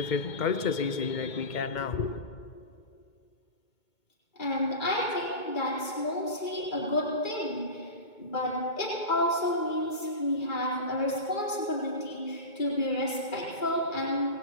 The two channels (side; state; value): right; late; 2.2 ms